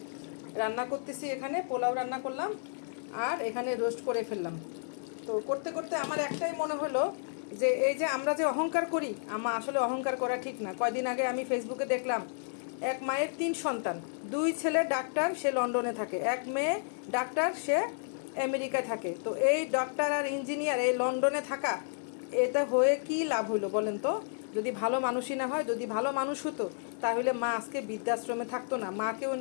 রান্না করতেছি, এখানে পোলাও রান্না করলাম আর এখানে রোস্ট করে ফেললাম। তো করতে করতে আমার একটাই মনে হলো যে এই যে আমরা যে অহংকার করি, আসলে অহংকার করা ঠিক না। কয়দিন আগে আমি ফেসবুকে দেখলাম এক মায়ের 3 সন্তান, 2 ছেলে ডাক্তার, সে লন্ডনে থাকে, এক মেয়ে ডাক্তার, সে আমেরিকায় থাকে। তো এই ডাক্তার আর ইঞ্জিনিয়ার এই লন্ডনে থাকা, এটা হয়ে কি লাভ হইলো বলেন তো? যদি ভালো মানুষই না হয়, যদি ভালো মানুষ হতো তাহলে মা আজকে বৃদ্ধাশ্রমে থাকতো না, মাকেও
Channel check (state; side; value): silent; right; digital silence